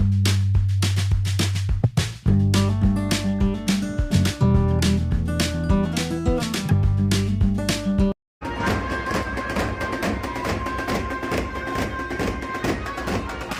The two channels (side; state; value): both; identical; correlation 1.00